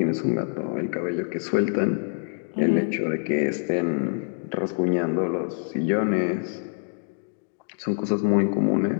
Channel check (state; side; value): silent; right; 61 dB below the other